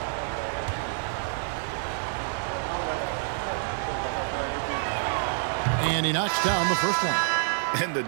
And he knocks down the first one. And the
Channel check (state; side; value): silent; left; 60 dB below the other